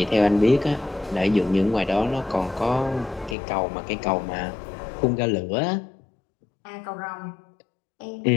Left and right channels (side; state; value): right; drops out; at 3.4 s